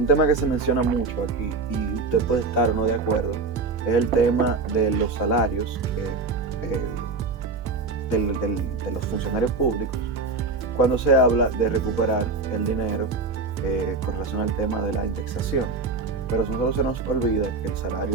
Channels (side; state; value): left; quieter; 4.0 dB